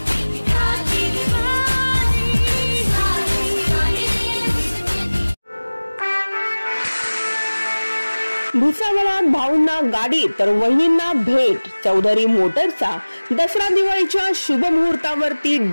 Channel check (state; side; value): inverted; both; correlation -1.00